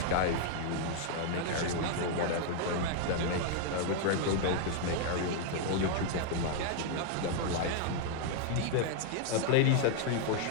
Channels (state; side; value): different; both; correlation 0.00